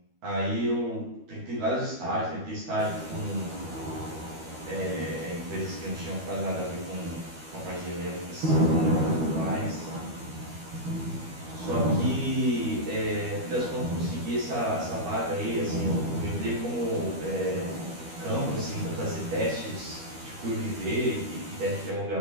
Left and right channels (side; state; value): left; late; 12 ms